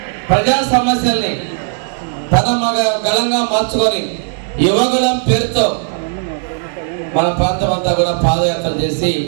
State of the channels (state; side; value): silent; left; digital silence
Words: ప్రజా సమస్యల్ని తన గలంగా మార్చుకొని యువగలం పేరుతో మన ప్రాంతం అంతా కూడా పాదయాత్ర చేసి